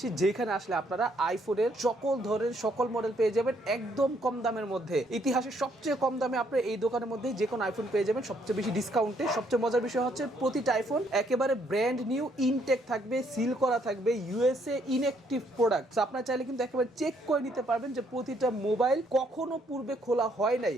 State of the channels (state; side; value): normal; both; correlation 0.70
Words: যেখানে আসলে আপনারা আইফোনের সকল ধরনের সকল মডেল পেয়ে যাবেন একদম কম দামের মধ্যে। ইতিহাসে সবচেয়ে কম দামে আপনারা এই দোকানের মধ্যে যে কোনো আইফোন পেয়ে যাবেন, সবচেয়ে বেশি ডিসকাউন্টে। সবচেয়ে মজার বিষয় হচ্ছে প্রতিটা আইফোন একেবারে ব্র্যান্ড নিউ, ইনটেক থাকবে, সিল করা থাকবে, ইউএসএ ইনঅ্যাক্টিভ প্রোডাক্ট। আপনারা চাইলে কিন্তু একেবারে চেক করে নিতে পারবেন যে প্রতিটা মোবাইল কখনো পূর্বে খোলা হয় নাই।